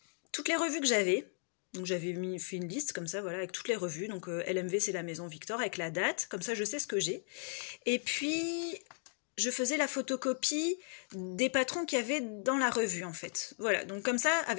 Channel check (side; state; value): right; silent; 54 dB below the other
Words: toutes les revues que j'avais. Donc j'avais fait une liste comme ça, voilà, avec toutes les revues. Donc LMV, c'est la Maison Victor, avec la date, comme ça je sais ce que j'ai. Et puis, je faisais la photocopie des patrons qu'il y avait dans la revue, en fait. Voilà, donc comme ça,